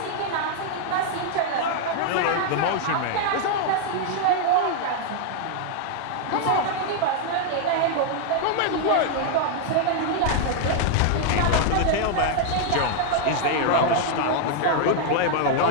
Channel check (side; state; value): both; different; correlation 0.00